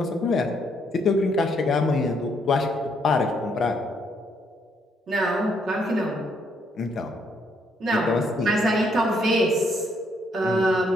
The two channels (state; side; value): normal; both; correlation 0.72